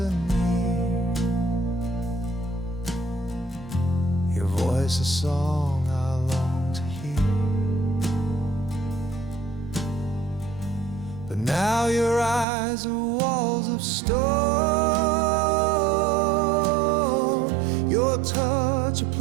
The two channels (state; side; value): drops out; left; at 12.5 s